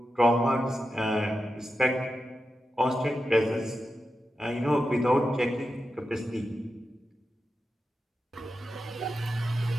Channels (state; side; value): normal; both; correlation 0.90